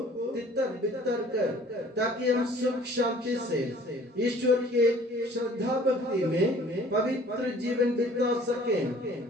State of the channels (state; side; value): normal; both; correlation 0.52